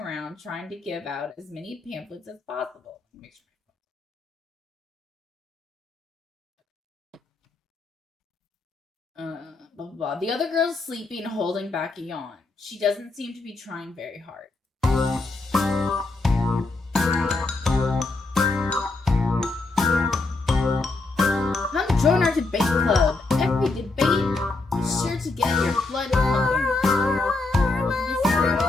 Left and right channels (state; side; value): quieter; right; 3.4 dB